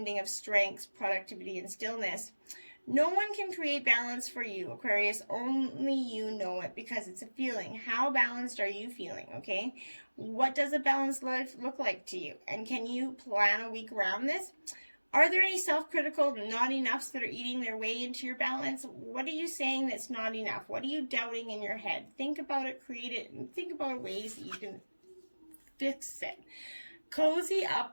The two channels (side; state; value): both; inverted; correlation -1.00